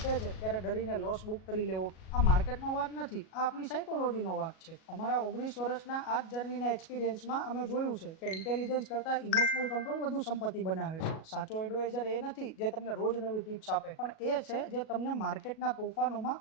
છે ત્યારે ડરીને લોસ બુક કરી લેવો, આ માર્કેટનો વાત નથી, આ આપણી સાયકોલોજીનો વાત છે. અમારા 19 વર્ષના આ જ જર્નીના એક્સપિરિયન્સમાં અમે જોયું છે કે ઇન્ટેલિજન્સ કરતા ઇમોશનલ કંટ્રોલ વધુ સંપત્તિ બનાવે છે. સાચો એડવાઇઝર એ નથી જે તમને રોજ નવી ટિપ્સ આપે, પણ એ છે જે તમને માર્કેટના તોફાનોમાં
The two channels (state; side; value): late; right; 37 ms